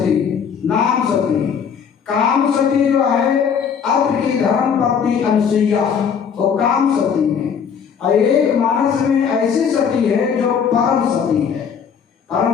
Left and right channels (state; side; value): quieter; right; 7.0 dB